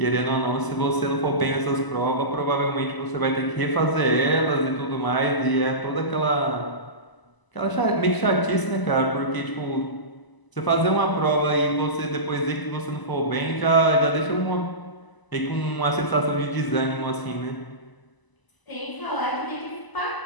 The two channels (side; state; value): right; late; 1.0 ms